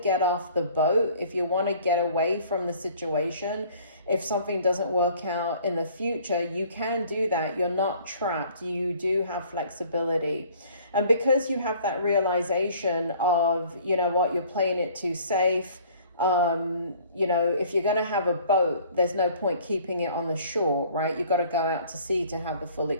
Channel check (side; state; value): both; inverted; correlation -0.54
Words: off the boat, if you want to get away from the situation, if something doesn't work out in the future, you can do that. You're not trapped. You do have flexibility. And because you have that realization of, you're playing it too safe. If you're going to have a boat, there's no point keeping it on the shore, right? You've got to go out to sea to have the full